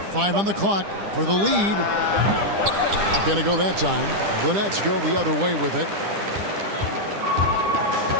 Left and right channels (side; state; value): left; late; 10 ms